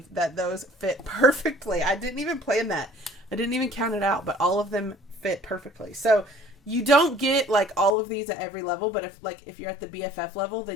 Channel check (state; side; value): drops out; right; at 7.9 s